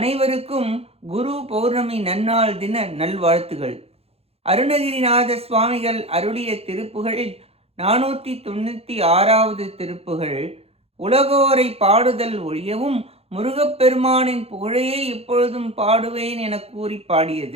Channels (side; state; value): left; late; 0.29 ms